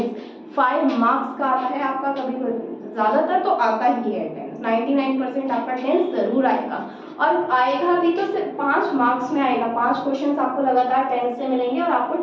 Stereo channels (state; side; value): identical; both; correlation 1.00